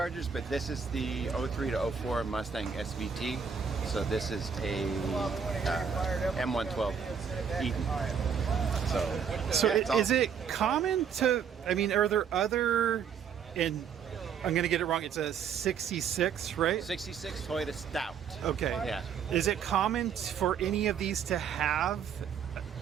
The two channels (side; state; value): left; quieter; 7.1 dB